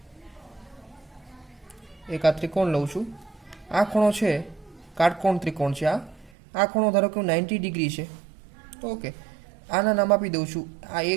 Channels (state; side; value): drops out; left; at 6.3 s